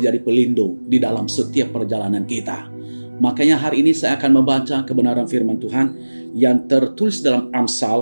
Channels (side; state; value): both; inverted; correlation -1.00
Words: pelindung di dalam setiap perjalanan kita. Makanya hari ini saya akan membaca kebenaran firman Tuhan yang tertulis dalam